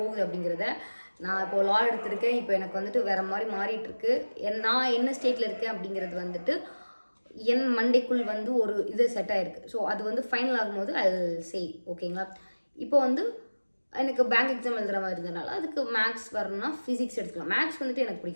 அப்படிங்கிறத. நான் இப்போது லா எடுத்திருக்கேன். இப்போ எனக்கு வந்துட்டு வேறு மாதிரி மாறிட்டுருக்கு. நான் என்ன ஸ்டேட்டில் இருக்கேன் அப்படிங்கிறது வந்துட்டு என் மண்டைக்குள் வந்து ஒரு இது செட் ஆகிருக்கு. ஸோ அது வந்து ஃபைனல் ஆகும்போது ஐ சே ஓகேங்களா. இப்போ வந்து எனக்கு பேங்க் எக்ஸாம் எழுதுகிற மாதிரி இருந்ததுனால அதுக்கு மேக்ஸ் வரணும்னா ஃபிசிக்ஸ் எடுத்துக்கலாம். மேக்ஸ் வந்துட்டு எனக்கு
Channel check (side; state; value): both; inverted; correlation -1.00